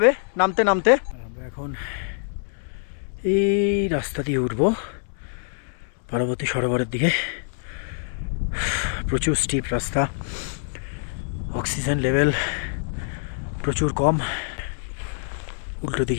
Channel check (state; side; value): silent; right; 61 dB below the other